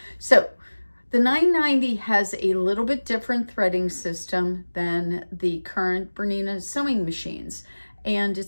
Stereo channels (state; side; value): inverted; both; correlation -1.00